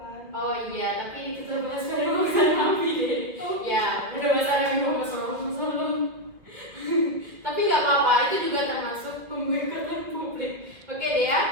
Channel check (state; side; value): late; left; 2.0 ms